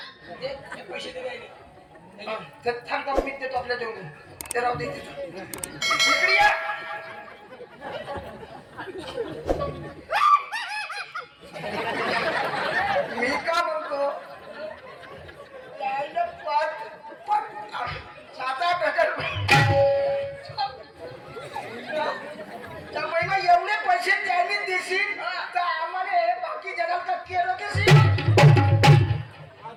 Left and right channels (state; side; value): identical; both; correlation 1.00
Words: पैसे दे थांबता मी देतो आपल्या जेवढे ते राहू दे इकडे या. मी का म्हणतो त्याला 7-8 त्या महिना एवढे पैसे त्यांनी देशील तर आम्हाला बाकी जगाला का केलं कशी